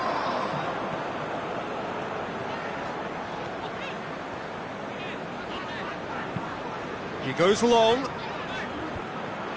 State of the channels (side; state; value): both; identical; correlation 1.00